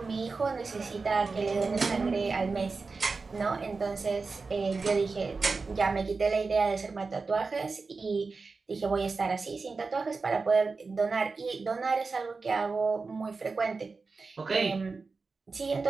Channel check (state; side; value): quieter; left; 4.3 dB